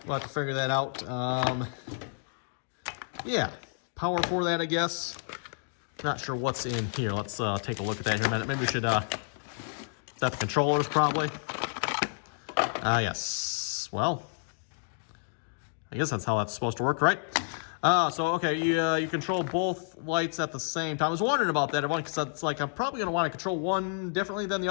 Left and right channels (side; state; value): right; silent; digital silence